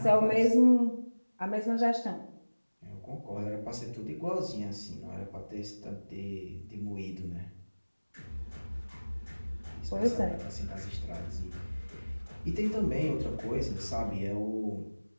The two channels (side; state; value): both; inverted; correlation -1.00